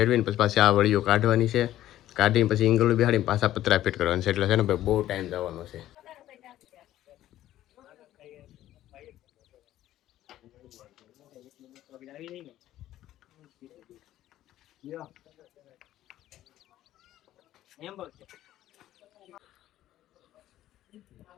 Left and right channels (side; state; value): right; quieter; 13.5 dB